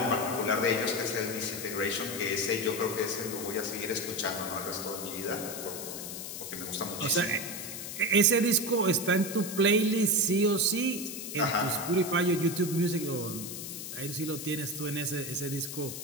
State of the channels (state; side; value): noise; left; hiss, 7 dB below the sound